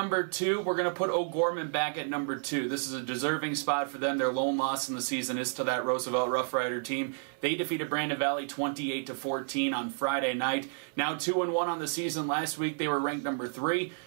2, we're going to put O'Gorman back at number 2. This is a deserving spot for them. Their lone loss in the season is to that Roosevelt Rough Rider team. They defeated Brandon Valley 28-14 on Friday night. Now 2-1 on the season. Last week they were ranked number 3.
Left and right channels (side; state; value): left; silent; 57 dB below the other